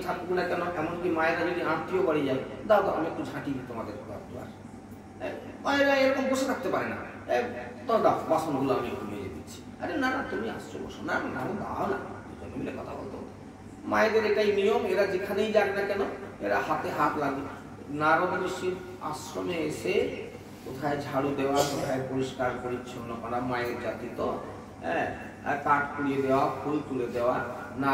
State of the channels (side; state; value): both; identical; correlation 1.00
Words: থাকুক না কেন, এমনকি মায়েরা যদি আত্মীয় বাড়ি যায়, দাও দাও আমি একটু ঝাঁটি দিই তোমাদের মায়েরা এরকম বসে থাকতে পারে না, তো দাও বাসনগুলো আমি একটু মেজে দিচ্ছি। আরে না না তুমি আসছো, বসো। না না দাও না, দুজনে মিলে কথা বলতো। মায়েদের এটাই নিয়ম, এরা যেখানেই যাক না কেন এরা হাতে হাত লাগে। নারদ ঋষির আশ্রমে এসে কোথায় ঝাড়ু দেওয়া, কোথায় পরিষ্কার পরিচ্ছন্ন করা, মায়ের জাতি তো, হ্যাঁ, কাঠ কুড়িয়ে দেওয়া, ফুল তুলে দেওয়া।